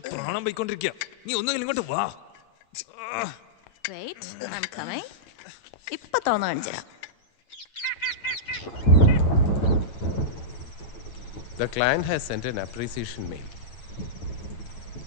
പ്രാണം പോയിക്കൊണ്ടിരിക്കുക. നീ ഒന്നുകിൽ ഇങ്ങോട്ട് വാ. ഇപ്പൊ തോന്നു കാണിച്ചുതരാം. The client has sent an appreciation mail.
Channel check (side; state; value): right; late; 8.7 ms